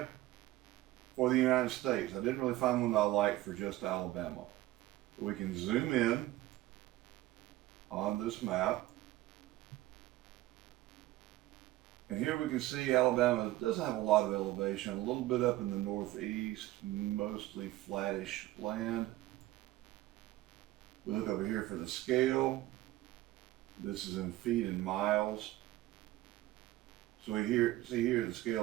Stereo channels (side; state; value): left; quieter; 16.5 dB